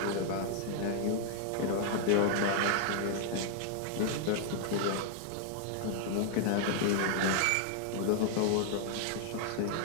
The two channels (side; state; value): both; different; correlation 0.00